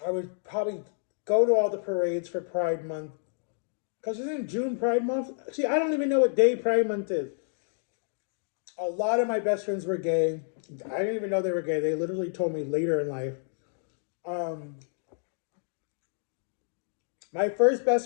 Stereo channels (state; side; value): silent; right; digital silence